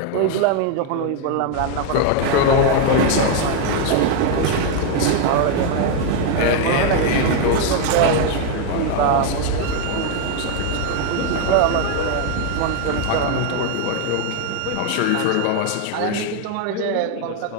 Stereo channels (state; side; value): different; both; correlation 0.01